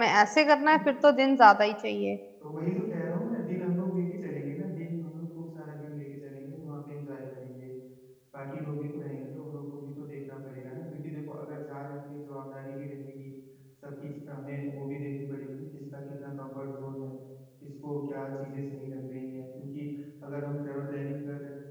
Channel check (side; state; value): both; identical; correlation 1.00